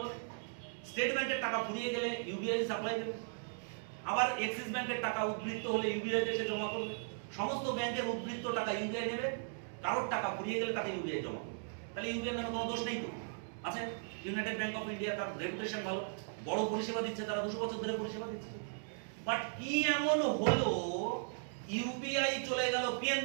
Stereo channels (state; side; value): silent; left; digital silence